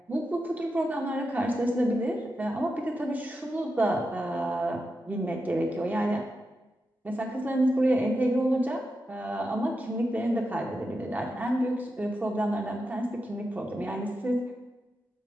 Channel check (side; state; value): both; normal; correlation 0.88